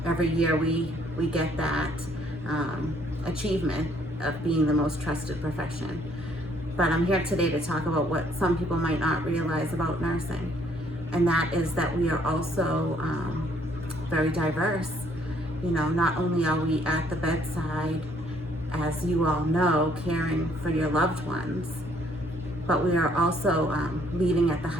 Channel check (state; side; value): normal; both; correlation 0.65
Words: every year we get that achievement of being the most trusted profession. But I'm here today to talk about what some people might not realize about nursing, and that is that we are also very diverse. You know, not only are we at the bedside, as you all know, caring for your loved ones, but we are also leading at the